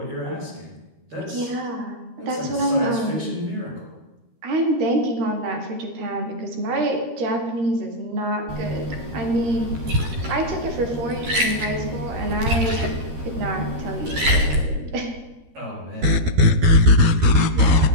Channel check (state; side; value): late; left; 13 ms